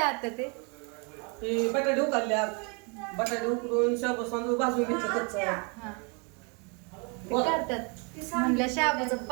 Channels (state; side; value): quieter; left; 34.3 dB